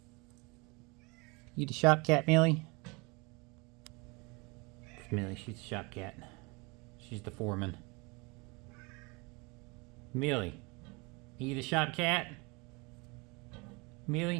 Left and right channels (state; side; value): quieter; left; 27.7 dB